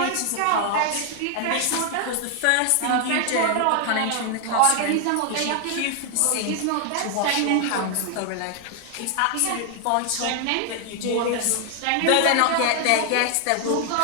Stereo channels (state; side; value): different; both; correlation 0.00